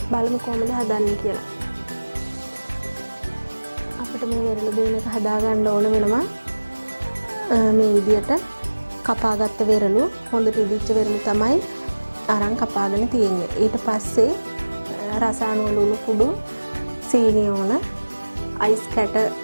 බලමු කොහොමද හදන්නේ කියලා. අපිට මේ වෙරළු බීම එක හදා ගන්න ඕන වෙනවා. මේ විදියට කපාගත්ත වෙරළු හොඳට ඉදිච්ච වෙරළු තමයි අරන් කපාගෙන තියෙන්නේ. ඊට පස්සේ රසායන ලුණු කුඩු, සීනි ඕන, අයිස් කැට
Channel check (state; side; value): inverted; both; correlation -1.00